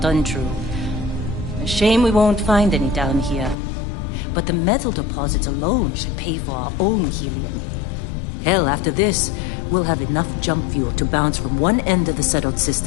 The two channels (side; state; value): right; drops out; at 3.6 s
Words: untrue. A shame we won't find any down here. But the metal deposits alone should pay for our own helium. Hell, after this, we'll have enough jump fuel to bounce from one end of the settled